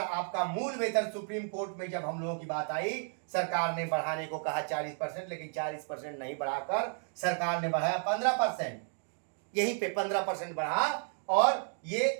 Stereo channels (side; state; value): left; silent; 56 dB below the other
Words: आपका मूल वेतन सुप्रीम कोर्ट में जब हम लोगों की बात आई, सरकार ने बढ़ाने को कहा 40%, लेकिन 40% नहीं बढ़ाकर सरकार ने बढ़ाया 15%। यहीं पे 15% बढ़ा, और ये